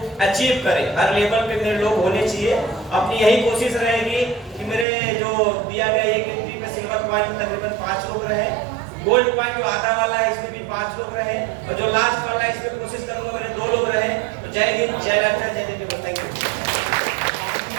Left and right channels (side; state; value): left; drops out; at 4.9 s